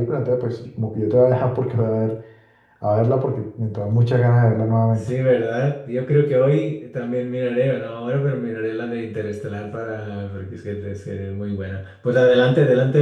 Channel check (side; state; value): both; identical; correlation 1.00